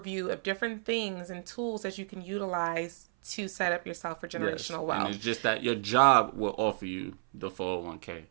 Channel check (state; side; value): silent; left; 57 dB below the other